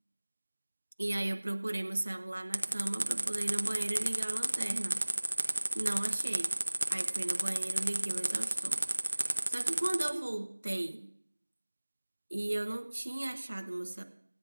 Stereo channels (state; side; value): inverted; both; correlation -1.00